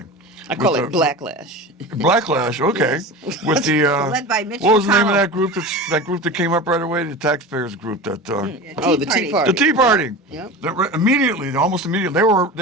I call With it the- blacklash. Backlash, okay. Yes. With the Led by Mitch what was the name of McConnell. that group? That group that came up right away, the taxpayers group. That Oh, the Tea Party. the Tea Party. Yep. Almost immediately,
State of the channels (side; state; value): both; normal; correlation 0.30